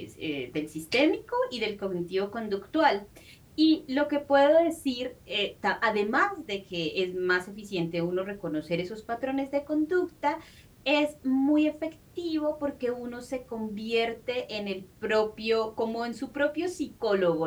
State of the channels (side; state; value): both; identical; correlation 1.00